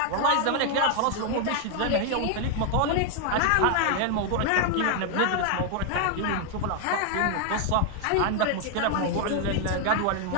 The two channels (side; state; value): both; different; correlation 0.00